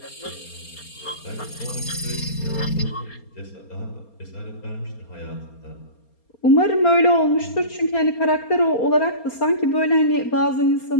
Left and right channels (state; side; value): late; right; 4.3 ms